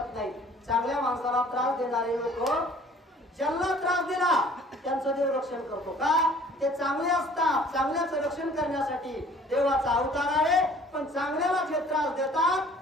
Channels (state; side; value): normal; both; correlation 0.53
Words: नाही. चांगल्या माणसाला त्रास देणारे लोक ज्यांना त्रास दिला त्यांचं देव रक्षण करतो का ते चांगले असतात. चांगल्याचं रक्षण करण्यासाठी देवाचा अवतार आहे पण चांगल्याला जे त्रास देतात